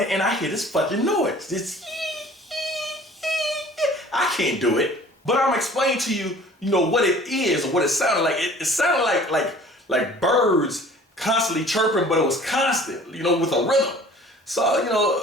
and I hear this fucking noise. This I can't do it. But I'm explaining to you, you know, what it is or what it sounded like. It sounded like birds constantly chirping, but it was constant, you know, with a rhythm. So, you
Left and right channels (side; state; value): both; normal; correlation 0.48